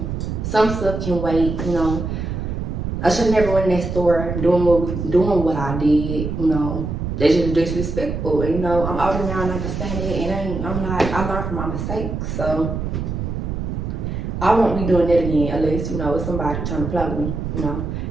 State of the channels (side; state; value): right; noise; rumble, 4 dB below the sound